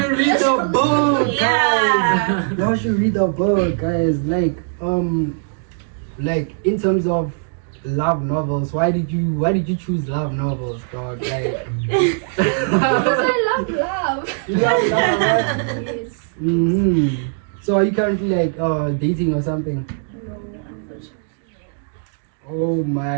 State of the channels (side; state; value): left; silent; digital silence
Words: read the book, guys. Yeah. Y'all should read the book, guys. Like in terms of love novels, why did you choose love novels, dog? Like, Because I love love. you love love, right? Yes. So are you currently like dating or something? No, unfortunately. Oh